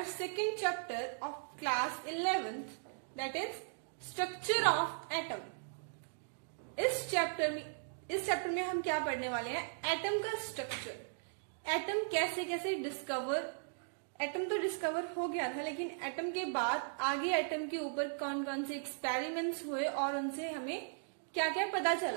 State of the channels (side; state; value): left; silent; digital silence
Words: second chapter of class 11th, that is Structure of Atom. इस chapter में हम क्या पढ़ने वाले हैं? Atom का structure, atom कैसे कैसे एटम तो डिस्कवर हो गया था, लेकिन एटम के बाद आगे एटम के ऊपर कौन कौन से एक्सपेरिमेंट्स हुए और उनसे हमें क्या क्या पता